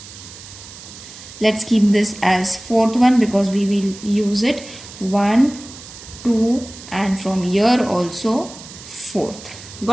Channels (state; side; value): noise; right; hiss, 16 dB below the sound